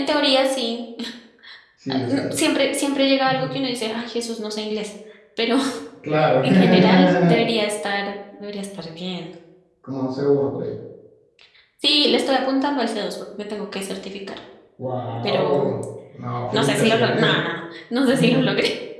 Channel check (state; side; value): identical; both; correlation 1.00